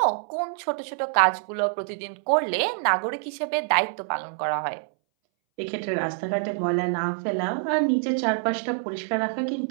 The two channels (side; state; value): left; silent; 60 dB below the other